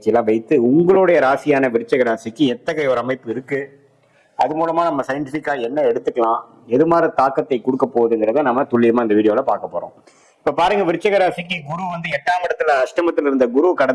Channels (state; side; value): identical; both; correlation 1.00